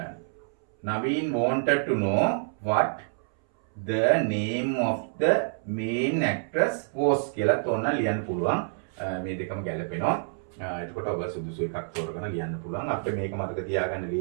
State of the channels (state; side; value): silent; left; 60 dB below the other